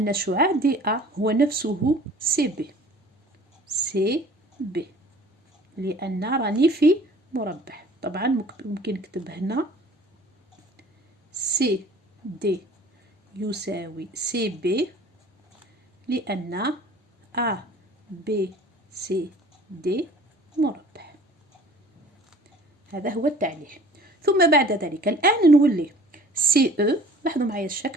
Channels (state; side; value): normal; both; correlation 0.48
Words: شعاع دي أ هو نفسه سي بي. سي بي لأن راني في مربع. طبعا ممكن نكتب هنا سي دي يساوي سي بي، لأن أ بي سي دي مربع. هذا هو التعليل. ثم بعد ذلك الآن نولي سي أو. لاحظوا معايا